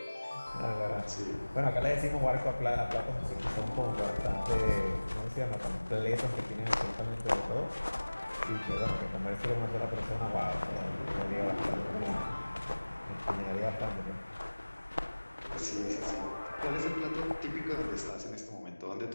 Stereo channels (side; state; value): both; inverted; correlation -1.00